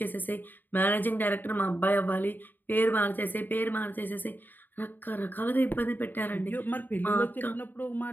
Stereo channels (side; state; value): right; late; 0.090 ms